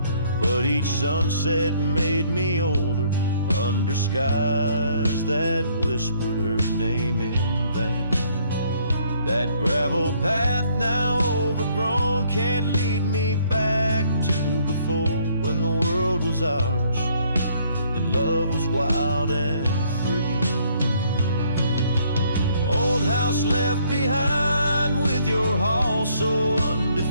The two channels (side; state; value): both; inverted; correlation -0.65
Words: but each sunset made me older, under skies that whispered her name in vain. That gravel path now overgrown can't lead me back to before, when the world was ours and love was wild and free. Old house left behind with your hall so